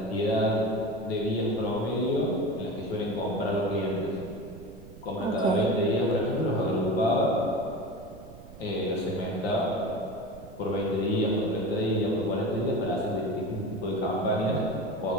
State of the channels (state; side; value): noise; right; rumble, 18 dB below the sound